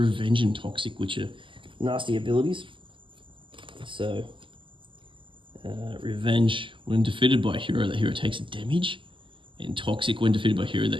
and toxic, which are nasty abilities. So revenge, when defeated by a hero, that hero takes damage. And toxic, when defeated by a hero, that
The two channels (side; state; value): left; late; 0.25 ms